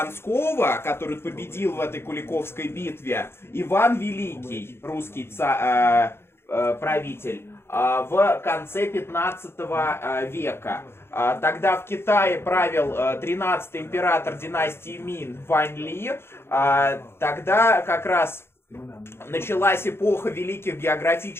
который победил в этой Куликовской битве, Иван Великий, русский правитель, в конце 15 века. Тогда в Китае правил 13-й император династии Мин Вань Ли. Тогда как раз началась эпоха великих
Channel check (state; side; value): late; right; 0.12 ms